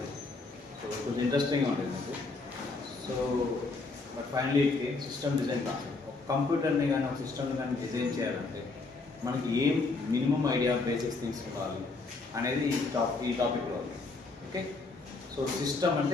సో కొంచెం ఇంట్రెస్టింగ్గా ఉండేది మీకు. So but finally system design కాదు. ఒక కంప్యూటర్ని కానీ ఒక సిస్టమ్ని కానీ డిజైన్ చేయాలంటే మనకి ఏం మినిమం ఐడియా బేసిక్స్ థింగ్స్ ఉండాలి అనేది ఈ టాపిక్లో ఉంది. ఓకే, సో సిస్టమ్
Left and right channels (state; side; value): quieter; right; 3.7 dB